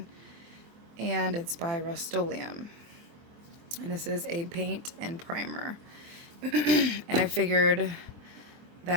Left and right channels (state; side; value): late; left; 24 ms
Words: and it's by Rust-Oleum. And this is a paint and primer. And I figured